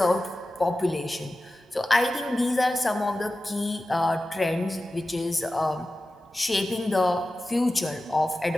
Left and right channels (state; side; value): normal; both; correlation 0.94